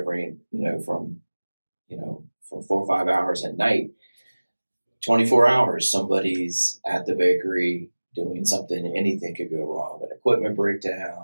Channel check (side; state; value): both; inverted; correlation -1.00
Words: from 4 or 5 hours at night, 24 hours, somebody's at the bakery doing something. Anything could go wrong. An equipment